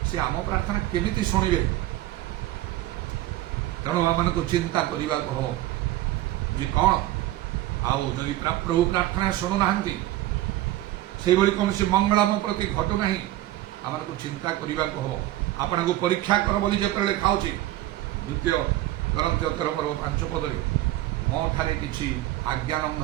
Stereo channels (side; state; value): left; quieter; 15.3 dB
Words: ସେ ଆମ ପ୍ରାର୍ଥନା କେମିତି ଶୁଣିବେ? ତେଣୁ ଆମମାନଙ୍କୁ ଚିନ୍ତା କରିବାକୁ ହବ ଯେ କ'ଣ, ଆଉ ଯଦି ପ୍ରଭୁ ପ୍ରାର୍ଥନା ଶୁଣୁନାହାନ୍ତି, ସେଇଭଳି କୌଣସି ମଙ୍ଗଳ ଆମ ପ୍ରତି ଘଟୁନାହିଁ, ଆମମାନଙ୍କୁ ଚିନ୍ତା କରିବାକୁ ହବ। ଆପଣଙ୍କୁ ପରୀକ୍ଷା କର ବୋଲି ଯେତେବେଳେ ଲେଖା ହେଉଛି 2 Corinthians 13:5 ମୋ ଠାରେ କିଛି ଆଜ୍ଞା